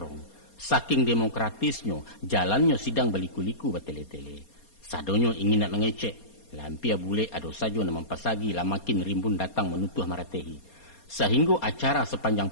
Saking demokratisnya, jalannya sidang baliku-liku batele-tele. Sadonyo ingin nak mengecek. Lampia bule ado saja nama pasagi lah makin rimbun datang menutuh maratehi. Sehingga acara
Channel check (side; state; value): right; late; 4.3 ms